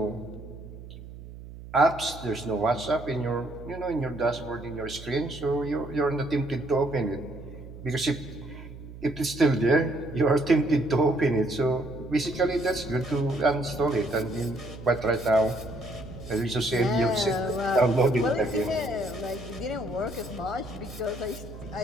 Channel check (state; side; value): noise; right; hum, 14 dB below the sound